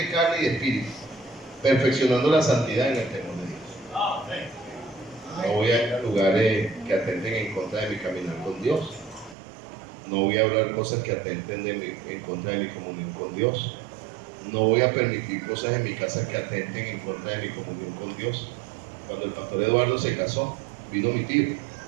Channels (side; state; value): left; drops out; at 9.3 s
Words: carne y de espíritu, perfeccionando la santidad en el temor de Dios. No voy a ir a lugares que atenten en contra de mi caminar con Dios. No voy a hablar cosas que atenten en contra de mi comunión con Dios. No voy a permitir cosas en mi casa que atenten en contra de mi comunión con Dios. Cuando el pastor Eduardo se casó, vino mi tío.